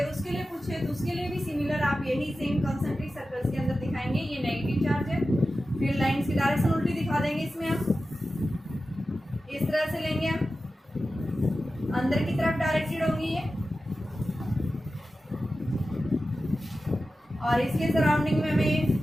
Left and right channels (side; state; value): both; normal; correlation 0.93